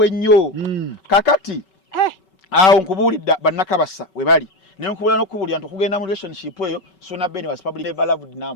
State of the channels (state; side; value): late; right; 5.3 ms